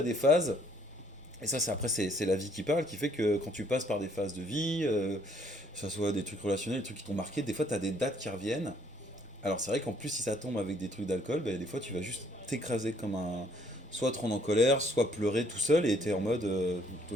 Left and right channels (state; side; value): normal; both; correlation 0.64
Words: des phases. Et ça, c'est la vie qui parle, qui fait que quand tu passes par des phases de vie, que ce soit des trucs relationnels, des trucs qui t'ont marqué, des fois, tu as des dates qui reviennent. Alors, c'est vrai qu'en plus, si ça tombe avec des trucs d'alcool, des fois, tu vas juste t'écraser comme un. Soit te rendre en colère, soit pleurer tout seul et t'es en mode. Toi,